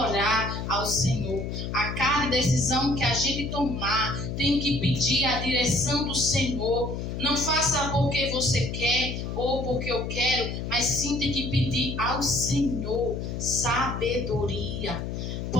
ao Senhor. A cada decisão que a gente tomar, tem que pedir a direção do Senhor. Não faça porque você quer ou porque eu quero, mas sim tem que pedir ao Senhor sabedoria.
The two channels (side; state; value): left; noise; hum, 5 dB below the sound